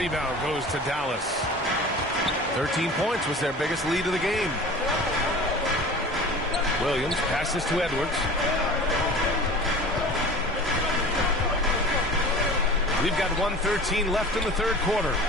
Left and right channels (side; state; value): both; normal; correlation 0.39